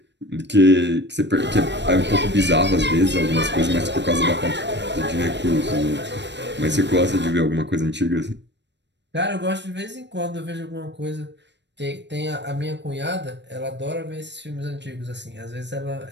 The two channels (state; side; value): late; left; 0.51 ms